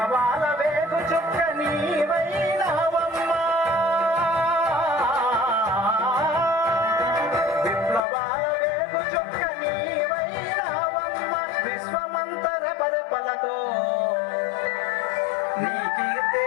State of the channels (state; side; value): drops out; right; at 8.0 s